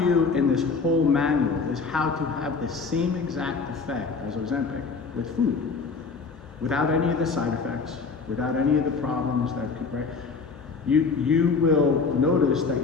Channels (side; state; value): right; quieter; 4.8 dB